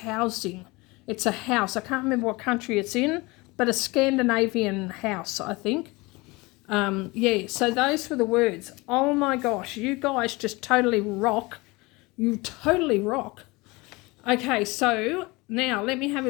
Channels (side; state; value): right; quieter; 23.8 dB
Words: It's a house. I can't remember what country it's in, but a Scandinavian house, I think. Yeah, so those were the words. Oh my gosh, you guys just totally rock. You totally rock. Okay, so now let me have